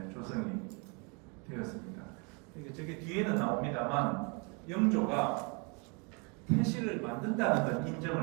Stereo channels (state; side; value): quieter; left; 33.2 dB